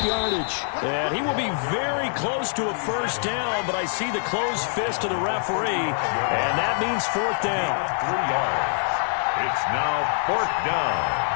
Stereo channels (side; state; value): right; silent; 62 dB below the other